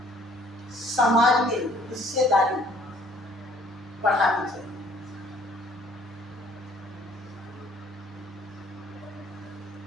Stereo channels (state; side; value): normal; both; correlation 0.59